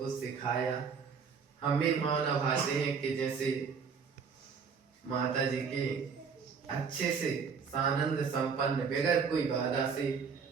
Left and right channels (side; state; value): left; quieter; 5.9 dB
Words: सिखाया। हम भी मानव भाते हैं कि जैसे माता जी के अच्छे से सानंद संपन्न बगैर कोई बाधा से